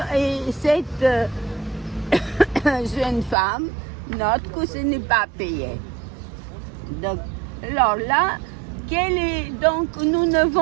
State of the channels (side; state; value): left; drops out; at 3.4 s